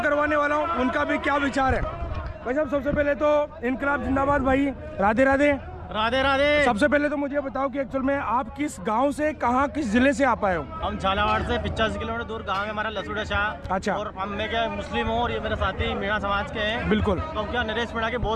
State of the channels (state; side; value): identical; both; correlation 1.00